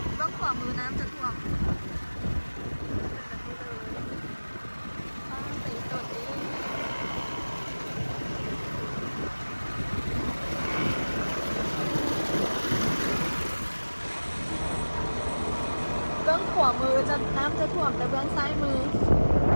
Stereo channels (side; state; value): both; inverted; correlation -1.00